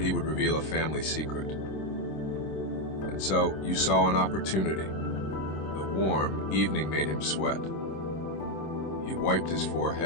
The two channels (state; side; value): late; right; 26 ms